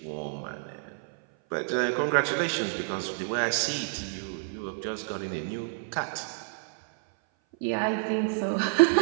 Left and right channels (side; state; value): left; silent; 56 dB below the other